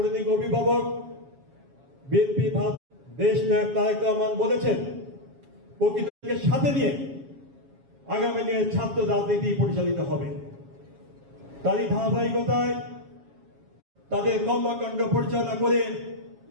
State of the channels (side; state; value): left; late; 7.3 ms